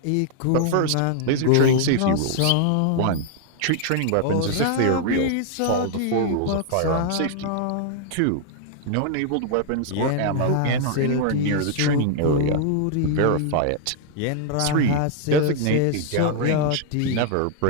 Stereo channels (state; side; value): different; both; correlation 0.00